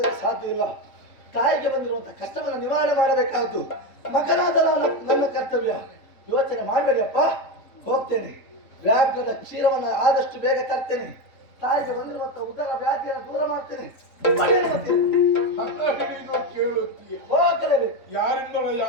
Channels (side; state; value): right; late; 3.7 ms